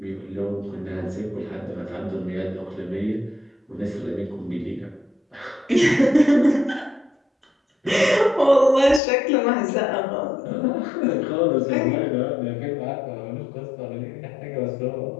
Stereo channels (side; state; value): right; drops out; at 9.0 s